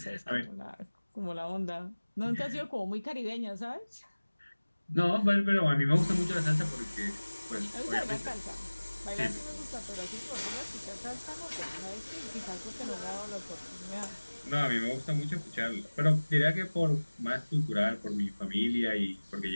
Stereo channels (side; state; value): both; inverted; correlation -1.00